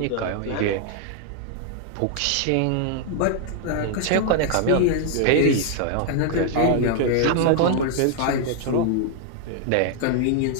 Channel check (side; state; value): both; different; correlation 0.00